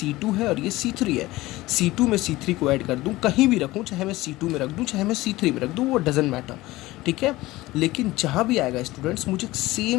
है और ये C3 है, C2 में C3 को ऐड कर दूँ, कहीं भी रखूँ, चाहे मैं C2 में रख दूँ चाहे मैं C3 में रख दूँ, वो डजेंट मैटर, ठीक है। लेकिन जहाँ भी आएगा स्टूडेंट्स, मुझे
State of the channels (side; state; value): right; quieter; 18.7 dB